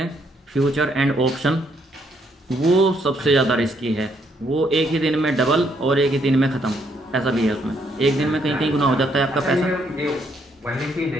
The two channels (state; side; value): normal; both; correlation 0.72